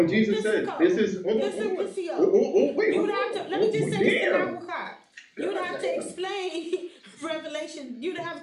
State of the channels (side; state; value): both; identical; correlation 1.00